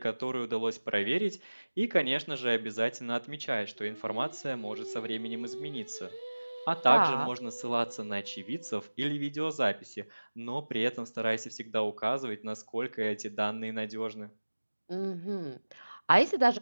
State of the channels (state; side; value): inverted; both; correlation -1.00